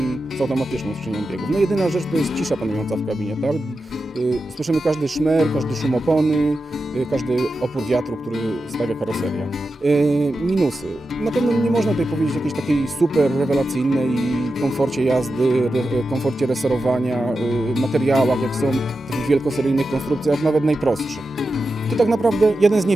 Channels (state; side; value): normal; both; correlation 0.91